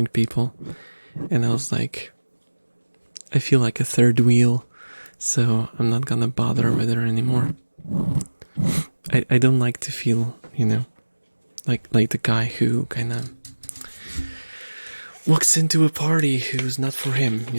people. And I was like, I feel like a third wheel, so I'm not gonna bother with her anymore. I don't like to feel, like the guy who kind of walks into a party who's not for him,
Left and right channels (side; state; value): both; inverted; correlation -1.00